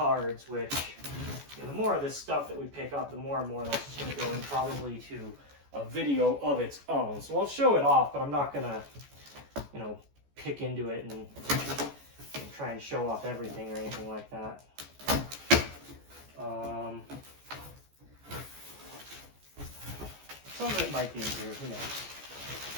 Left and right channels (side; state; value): left; late; 14 ms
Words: which, you know, the more of this stuff that we pick up, the more and more that's just going to go in probably to a video of its own. So I'll show it off, but I'm not going to, you know, pick into it and try and show off everything or anything like that. Some of it might be in here, who knows.